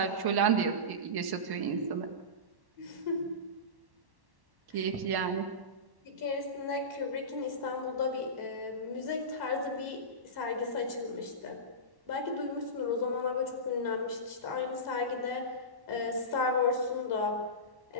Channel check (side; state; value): left; late; 1.1 ms